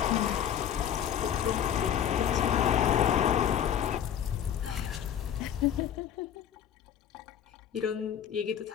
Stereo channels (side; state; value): right; quieter; 9.4 dB